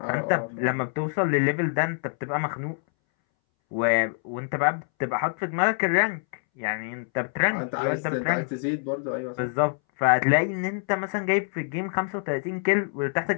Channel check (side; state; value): right; silent; 61 dB below the other